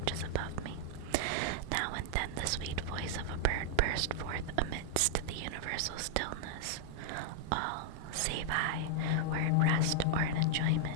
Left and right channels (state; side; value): different; both; correlation -0.01